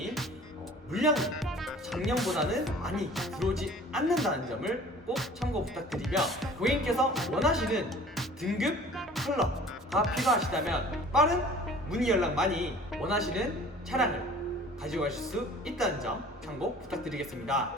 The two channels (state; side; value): normal; both; correlation 0.47